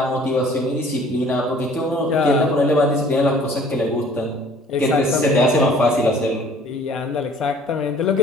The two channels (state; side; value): normal; both; correlation 0.53